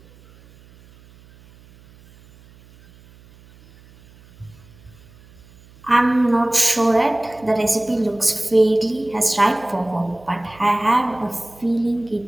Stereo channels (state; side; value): noise; right; hum, 26 dB below the sound